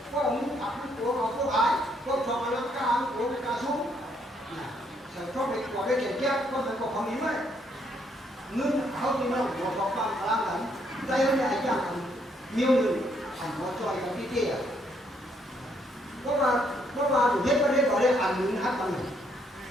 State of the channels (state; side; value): normal; both; correlation 0.71